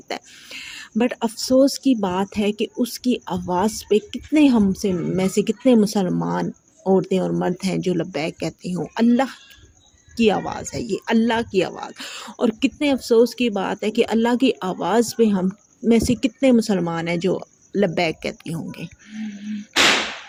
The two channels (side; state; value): both; identical; correlation 1.00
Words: है। बट अफ़सोस की बात है कि उसकी आवाज़ पे कितने हमसे में से कितने मुसलमान औरतें और मर्द हैं जो लब्बैक कहते हों। अल्लाह की आवाज़ है ये, अल्लाह की आवाज़। और कितने अफ़सोस की बात है कि अल्लाह की आवाज़ पे हम में से कितने मुसलमान हैं जो लब्बैक कहती होंगे।